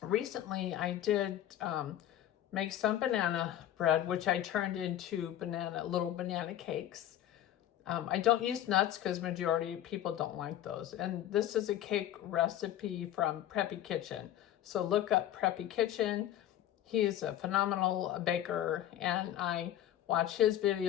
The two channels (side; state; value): right; quieter; 12.0 dB